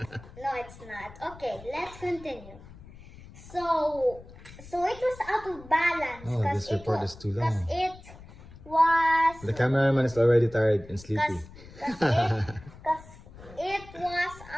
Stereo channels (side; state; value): left; noise; rumble, 19 dB below the sound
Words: No, it's not. Okay, let's continue. So it was out of balance. Oh, this report is too long. Because it was... The cameraman is already tired and sleepy. Because it